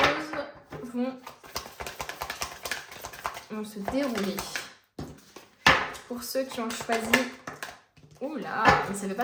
vont se dérouler. Pour ceux qui ont choisi... Oula, mais ça ne veut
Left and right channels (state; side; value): identical; both; correlation 1.00